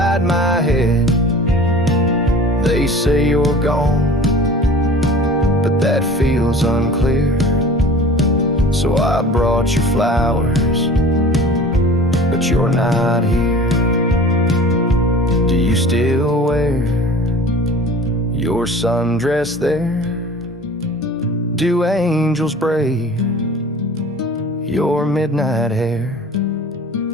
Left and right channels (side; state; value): both; normal; correlation 0.42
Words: my head. They say you're gone, but that feels unclear. So I brought you flowers, but you're not here. Do you still wear your sundress there? Do angels braid your midnight hair?